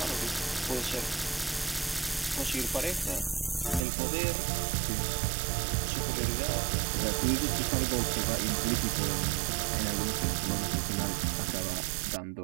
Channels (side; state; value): left; drops out; at 3.9 s